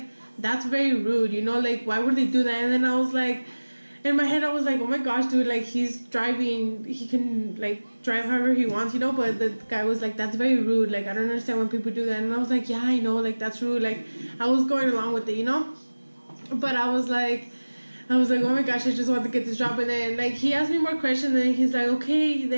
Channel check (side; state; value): both; inverted; correlation -1.00